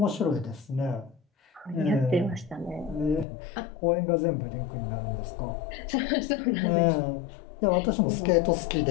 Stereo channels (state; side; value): drops out; right; at 3.2 s